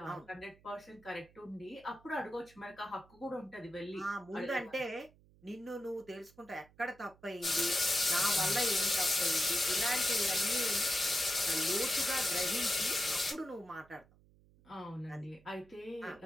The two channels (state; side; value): noise; right; hum, 28 dB below the sound